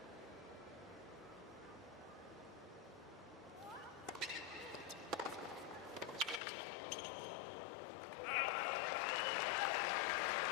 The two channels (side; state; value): right; drops out; at 6.4 s